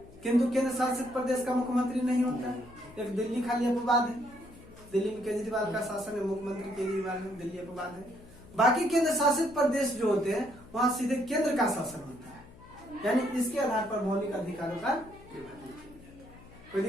किंतु केंद्र शासित प्रदेश का मुख्यमंत्री नहीं होता है। एक दिल्ली खाली अपवाद है, दिल्ली में केजरीवाल का शासन है, मुख्यमंत्री केजरीवाल है, दिल्ली अपवाद है। बाकी केंद्र शासित प्रदेश जो होते हैं वहां सीधे केंद्र का शासन होता है। यानी इसके आधार पर मौलिक अधिकारों का विभाजन किया जाता है। कोई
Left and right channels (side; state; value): left; noise; hum, 21 dB below the sound